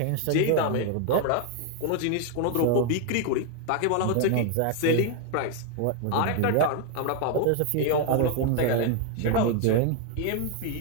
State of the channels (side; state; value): both; different; correlation 0.00